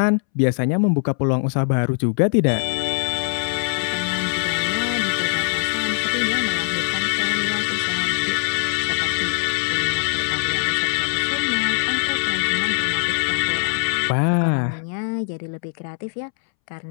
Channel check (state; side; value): silent; right; 64 dB below the other